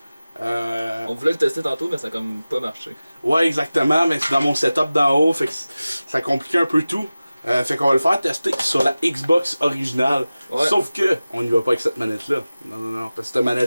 On voulait le tester tantôt, mais ça a comme pas marché. Ouais, exactement, mais c'est dans mon setup d'en haut, fait que ça compliquait un peu tout. Fait qu'on va le faire tester sur la Xbox originale. Ouais. Sauf que, on n'y va pas avec cette manette-là. Non, parce que cette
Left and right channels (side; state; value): both; inverted; correlation -0.96